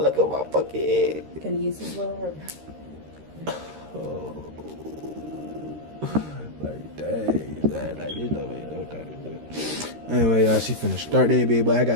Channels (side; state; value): left; late; 13 ms